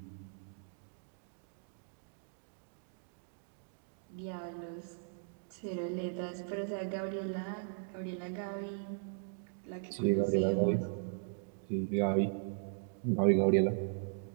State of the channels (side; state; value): left; silent; digital silence